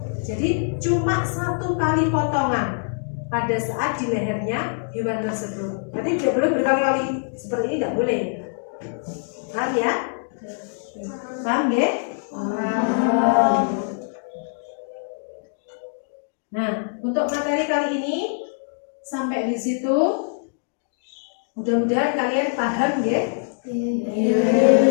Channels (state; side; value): silent; right; digital silence